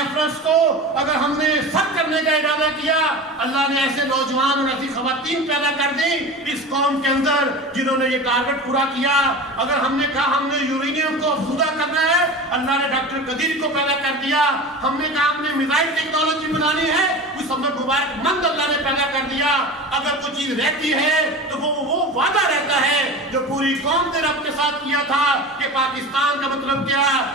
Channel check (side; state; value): both; normal; correlation 0.32